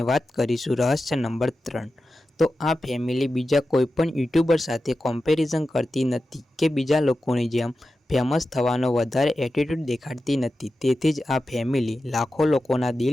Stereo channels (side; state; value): both; normal; correlation 0.92